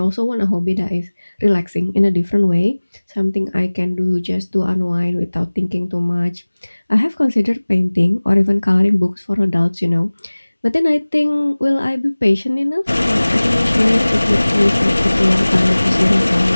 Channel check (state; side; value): inverted; both; correlation -1.00